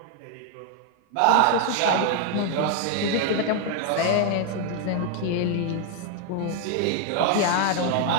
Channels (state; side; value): different; both; correlation 0.00